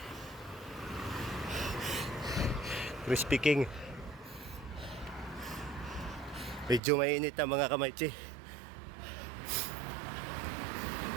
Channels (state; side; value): drops out; left; at 6.8 s